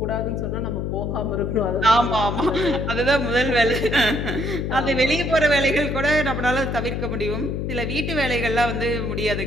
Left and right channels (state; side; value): noise; left; hum, 2 dB below the sound